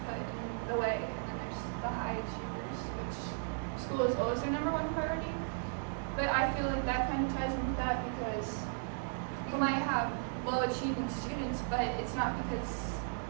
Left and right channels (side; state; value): left; silent; 54 dB below the other